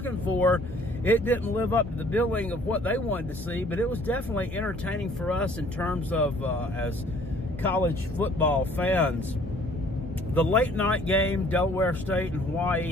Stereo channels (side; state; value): both; normal; correlation 0.57